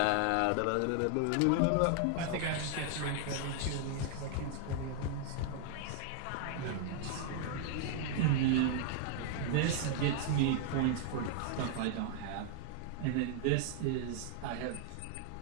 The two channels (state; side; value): different; both; correlation 0.00